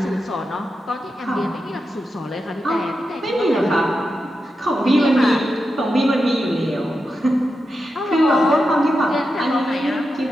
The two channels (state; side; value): normal; both; correlation 0.88